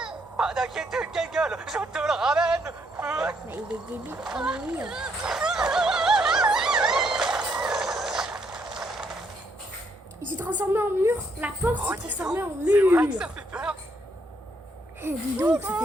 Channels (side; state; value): both; normal; correlation 0.73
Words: Pas d'inquiétude, Gengal, je te le ramène. Mais il est débile. Oh oui. Il s'est transformé en mur. La porte Oh, s'est dis transformée en donc, c'est vrai que mur. ça fait peur. Eh, dis donc, ça fait